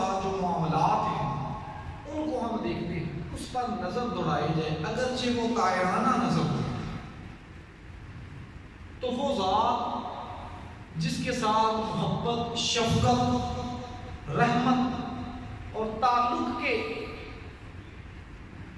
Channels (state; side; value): identical; both; correlation 1.00